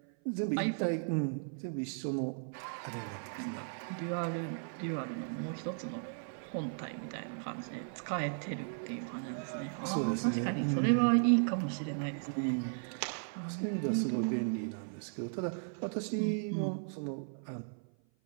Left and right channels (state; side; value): silent; left; 54 dB below the other